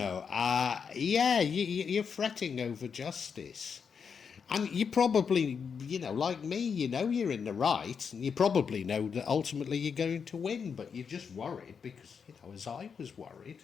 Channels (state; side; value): quieter; right; 6.4 dB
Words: yeah, you're fretting over justice. And you probably, you know, like me, you know you're in the right, and you probably know that ultimately you're going to win, but you're just worried because, you know, as I was worried,